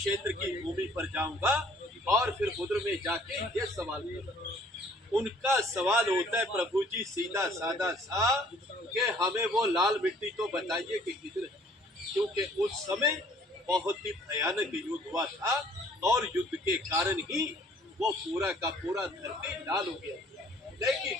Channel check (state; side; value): normal; both; correlation 0.58